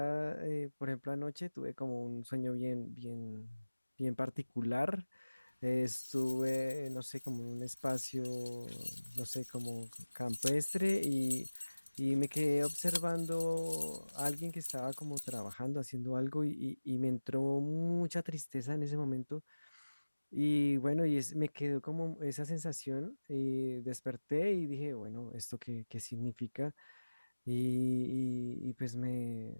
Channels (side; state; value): both; inverted; correlation -1.00